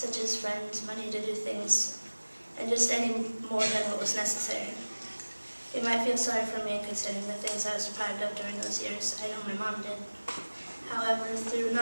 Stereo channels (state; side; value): inverted; both; correlation -1.00